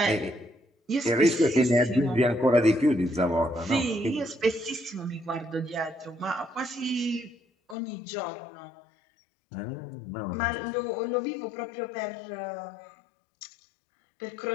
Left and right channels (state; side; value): drops out; right; at 7.8 s